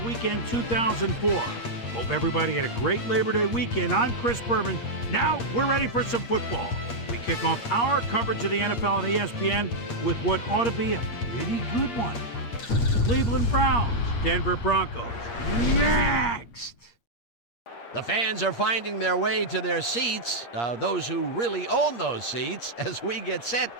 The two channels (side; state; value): right; late; 8.5 ms